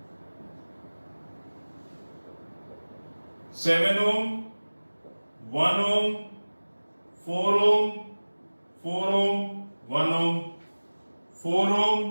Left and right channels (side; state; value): both; inverted; correlation -1.00